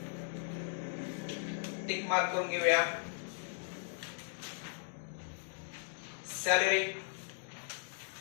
टिक मार्क करून घेऊया। सॅलरी,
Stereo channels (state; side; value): silent; right; digital silence